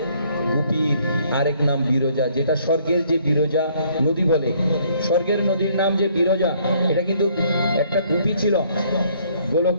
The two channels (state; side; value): inverted; both; correlation -0.64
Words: গোপীর আরেক নাম বিরজা, যেটা স্বর্গের যে বিরজা নদী বলে, স্বর্গের নদীর নাম যে বিরজা, এটা কিন্তু একটা গোপী ছিল